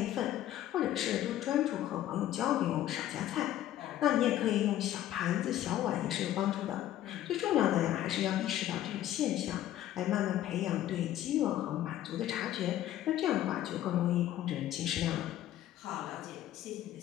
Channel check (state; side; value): quieter; right; 12.9 dB